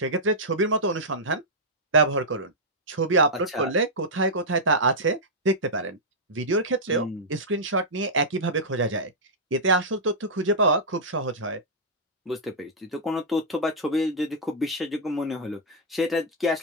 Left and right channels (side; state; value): both; normal; correlation -0.09